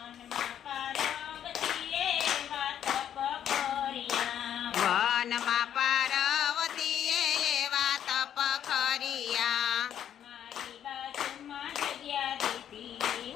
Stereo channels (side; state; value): right; quieter; 9.9 dB